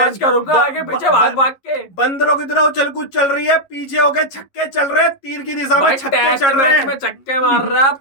करूंगा आगे पीछे भाग भाग के। बंदरों की तरह उछल कूद चल रही है, पीछे होके छक्के चल रहे हैं, तीर की दिशा में छक्के चल रहे हैं। में छक्के मार रहा है, अब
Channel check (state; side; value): late; right; 11 ms